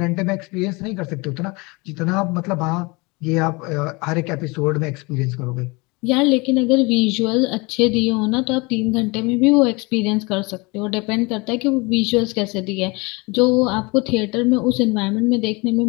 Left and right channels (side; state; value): right; quieter; 26.5 dB